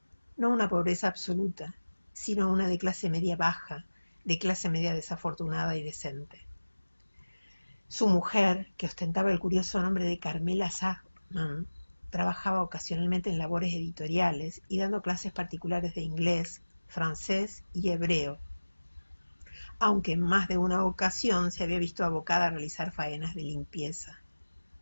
No una pobreza absoluta, sino una de clase media baja, de clase media desafortunada y decente. Su mujer, que ostentaba el curioso nombre de Carmela Sachman, trabajaba ocasionalmente en labores editoriales y dando clases particulares de inglés, francés y hebreo, aunque en más de una ocasión se había visto abocada a realizar faenas de limpieza.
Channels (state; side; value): inverted; both; correlation -1.00